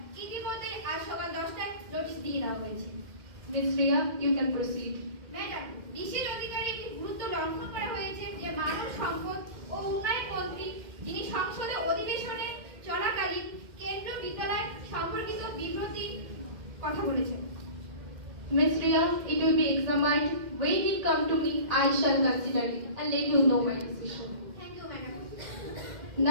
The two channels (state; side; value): late; left; 2.1 ms